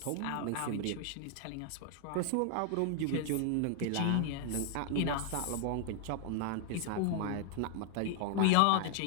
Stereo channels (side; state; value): both; different; correlation 0.00